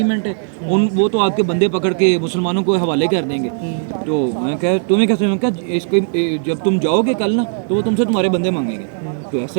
ہے، وہ تو آپ کے بندے پکڑ کے مسلمانوں کو حوالے کر دیں گے۔ تو میں کہا تمہیں کیسے، میں کہا اس کے جب تم جاؤ گے کل نا تو وہ تم سے تمہارے بندے مانگیں گے۔ تو ایسا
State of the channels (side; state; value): left; silent; digital silence